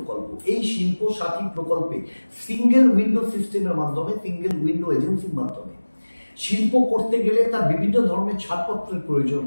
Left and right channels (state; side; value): inverted; both; correlation -1.00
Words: এই শিল্প সাথী প্রকল্পে সিঙ্গেল উইন্ডো সিস্টেমের মাধ্যমে, সিঙ্গেল উইন্ডো এজেন্সির মাধ্যমে শিল্প করতে গেলে তার বিভিন্ন ধরনের ছাড়পত্রের প্রয়োজন